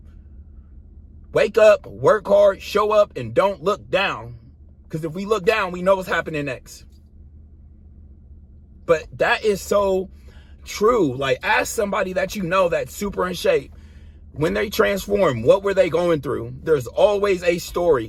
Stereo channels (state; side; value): identical; both; correlation 1.00